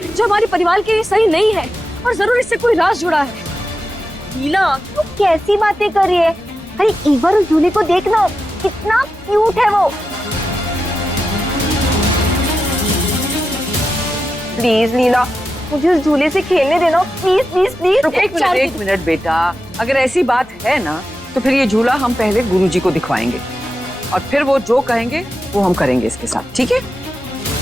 जो हमारे परिवार के लिए सही नहीं है, और जरूर इससे कोई राज जुड़ा है। हीला, तू कैसी बातें कर रही है? अरे एक बार उस झूले को देखना, कितना क्यूट है वो। प्लीज लीला, मुझे उस झूले से खेलने देना, प्लीज प्लीज प्लीज। एक मिनट बेटा, अगर ऐसी बात है ना तो फिर ये झूला हम पहले गुरुजी को दिखवाएंगे, और फिर वो जो कहेंगे वो हम करेंगे इसके साथ, ठीक है?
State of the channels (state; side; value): normal; both; correlation 0.89